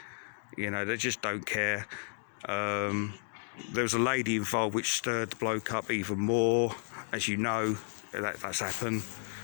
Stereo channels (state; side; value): silent; right; digital silence